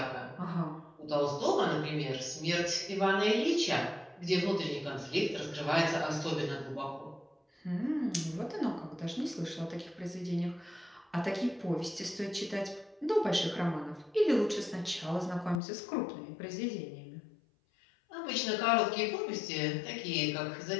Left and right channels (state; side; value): drops out; right; at 15.6 s